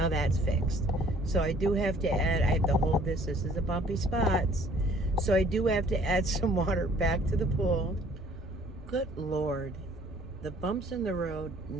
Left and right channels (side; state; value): both; normal; correlation 0.57